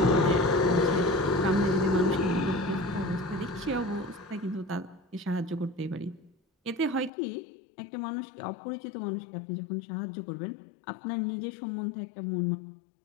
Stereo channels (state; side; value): drops out; right; at 7.1 s